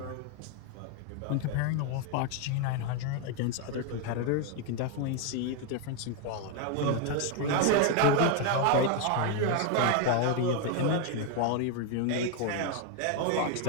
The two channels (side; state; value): both; different; correlation 0.01